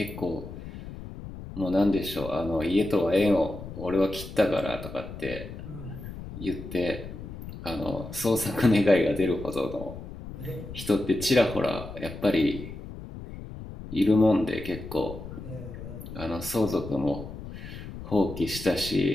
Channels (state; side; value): noise; left; rumble, 11 dB below the sound